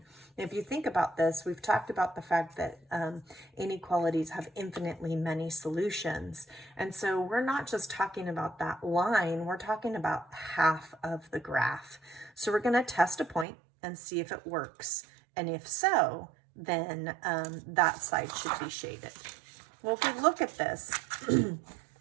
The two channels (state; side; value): drops out; left; at 13.5 s